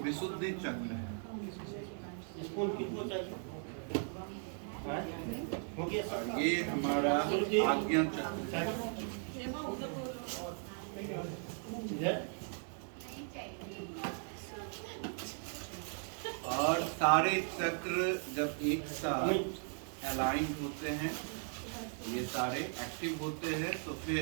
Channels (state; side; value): silent; left; 53 dB below the other